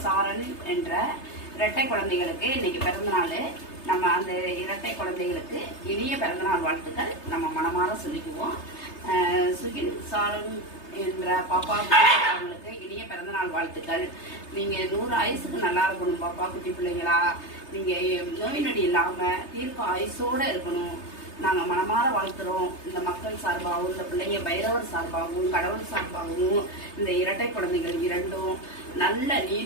சாரன் என்ற இரட்டை குழந்தைகளுக்கு இன்னைக்கு பிறந்தநாள். நம்ம அந்த இரட்டை குழந்தைகளுக்கு இனிய பிறந்தநாள் வாழ்த்துக்கள் நம்ம மனமாற சொல்லிக்குவோம். சுகில் சாரன் என்ற பாப்பா அவங்களுக்கு இனிய பிறந்தநாள் வாழ்த்துக்கள். நீங்கள் 100 ஆயுசுக்கு நல்லா இருக்கணும் பாப்பா, குட்டி பிள்ளைங்களா. நீங்கள் நோய் நொடி இல்லாமல் தீர்க்க ஆயுசோடு இருக்கணும். நாங்கள் மனமாற வாழ்த்துறோம். இந்த மக்கள் சார்பாகவும், இந்த பிள்ளைங்க பைரவர் சார்பாகவும், கடவுள் சார்பாகவும் இந்த இரட்டை குழந்தைகள் இரண்டும் நல்ல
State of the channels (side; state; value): right; late; 3.3 ms